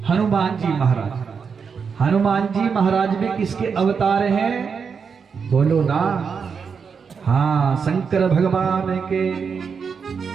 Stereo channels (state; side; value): quieter; left; 6.0 dB